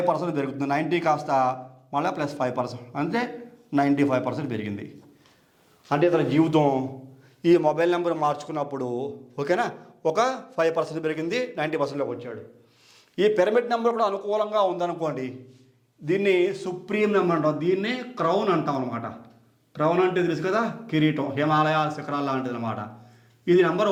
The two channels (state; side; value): identical; both; correlation 1.00